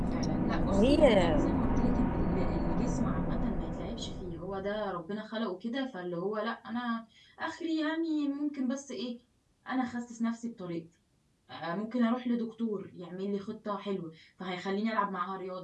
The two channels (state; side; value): identical; both; correlation 1.00